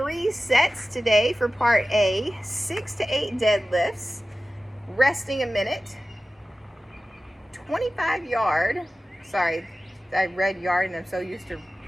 sets today for part A, 6 to 8 deadlifts, resting a minute, 25 yard, sorry, I read yard and I'm so used to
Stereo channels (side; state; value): both; normal; correlation 0.95